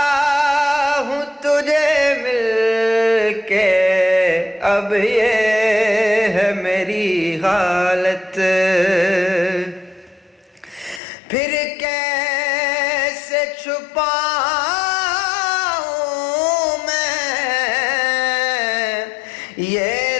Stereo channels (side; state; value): right; drops out; at 11.0 s